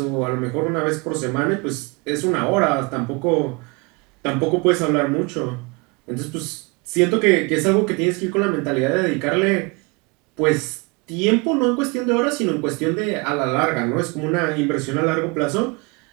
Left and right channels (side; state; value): left; quieter; 29.3 dB